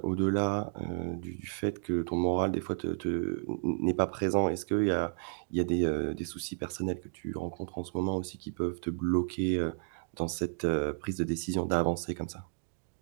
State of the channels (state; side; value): silent; left; digital silence